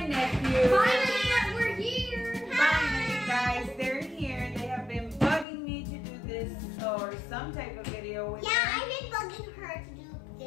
nephew. Finally, we're here. Finally, guys, they're here. They have been bugging me to do this or some type of video with Yeah, them. I've been bugging her to do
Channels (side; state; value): right; drops out; at 5.5 s